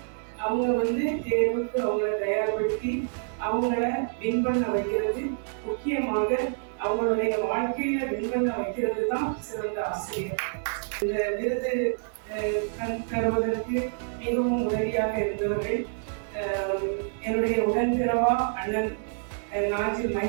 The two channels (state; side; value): silent; left; 60 dB below the other